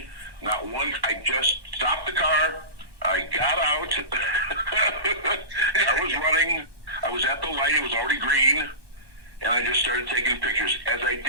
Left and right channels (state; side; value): late; left; 1.2 ms